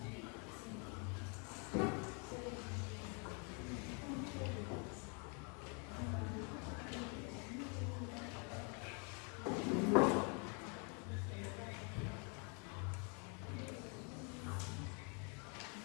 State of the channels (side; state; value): right; quieter; 36.4 dB